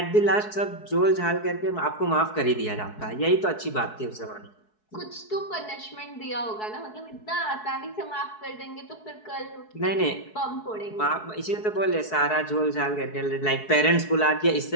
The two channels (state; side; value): late; right; 4.7 ms